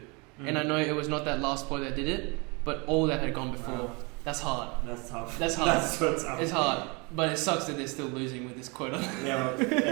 and I know it was not that last bloke that did it, but all that had gone before. Wow. That's hard. That's tough. That's hard. That's so tough. It's hard, but it sucks that they're still losing with this quota. Yeah, well,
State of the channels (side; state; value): left; quieter; 29.5 dB